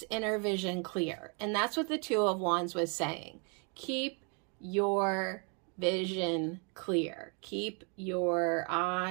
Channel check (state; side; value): quieter; left; 36.9 dB